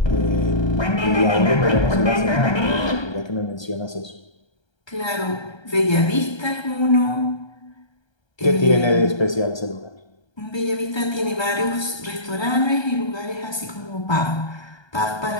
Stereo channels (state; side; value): late; right; 1.3 ms